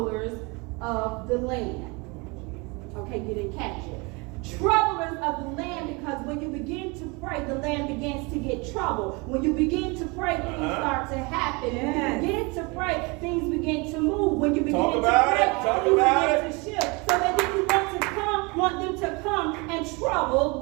of the land. Okay, you didn't catch it. Troublers of the land, because when you begin to pray, the land begins to get trouble. When you begin to pray, things start to happen. When you begin to pray, things begin to move. When you begin to pray, things begin to shift. So that then you want them to come and trouble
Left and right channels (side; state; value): left; quieter; 28.0 dB